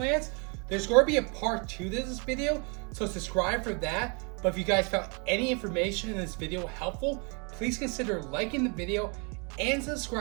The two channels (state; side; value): quieter; left; 33.6 dB